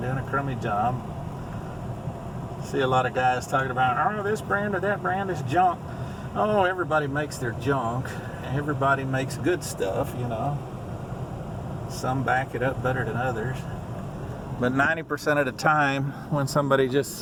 doing a crummy job. See a lot of guys talking about, oh, this brand or that brand is junk. Oh, everybody makes their junk. Everybody makes good stuff, you know. Some back it up better than others. But 90% of the time, when somebody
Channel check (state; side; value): identical; both; correlation 1.00